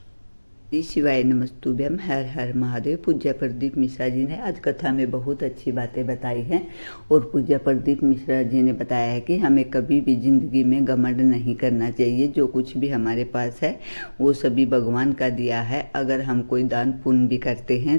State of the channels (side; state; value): both; inverted; correlation -1.00